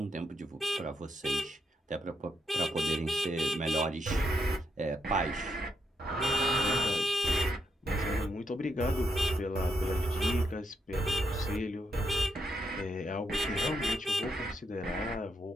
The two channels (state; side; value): normal; both; correlation 0.80